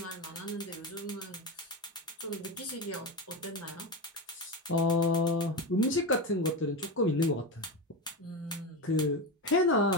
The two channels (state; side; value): normal; both; correlation 0.18